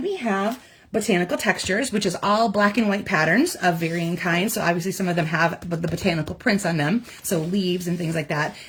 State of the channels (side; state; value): both; identical; correlation 1.00